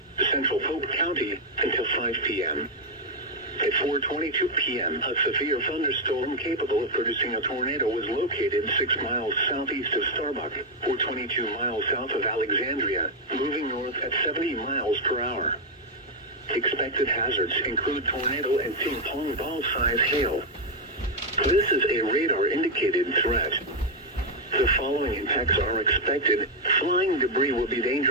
Central Polk County, until 5 p.m. At 4:22 p.m., a severe thunderstorm capable of producing a tornado was located 6 miles southeast of Starbuck, or 22 miles south of Alexandria, moving north at 70 miles per hour. Expected hazards include tornado and ping-pong ball-size hail. This is a radar-indicated threat. The following impacts are expected. Flying debris will be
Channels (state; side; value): normal; both; correlation 0.02